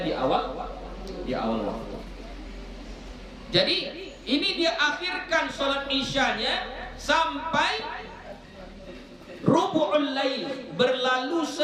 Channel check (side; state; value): both; identical; correlation 1.00